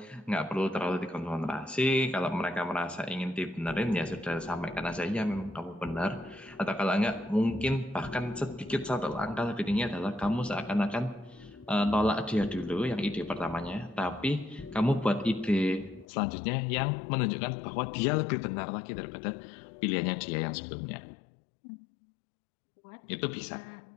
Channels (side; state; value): right; drops out; at 16.1 s